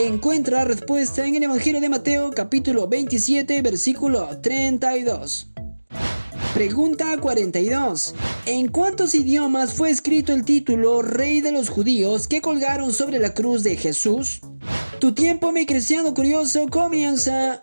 la respuesta en el Evangelio de Mateo capítulo 27 versículo 32. Pregunta 42. ¿En cuántos idiomas fue escrito el título Rey de los Judíos que colgaron sobre la cruz de Jesús? Tu tiempo, mi cristiano curioso, comienza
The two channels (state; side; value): inverted; both; correlation -1.00